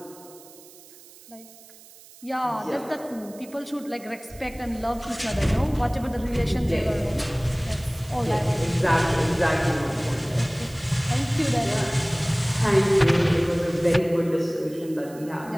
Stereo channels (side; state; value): right; noise; hiss, 22 dB below the sound